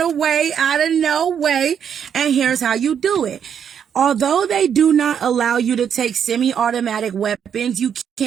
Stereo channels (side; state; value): left; quieter; 8.1 dB